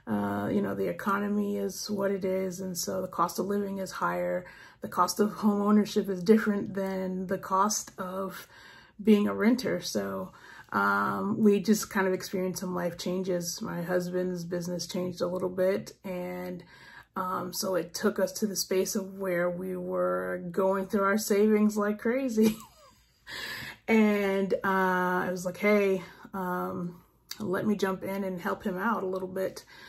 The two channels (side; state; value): both; identical; correlation 1.00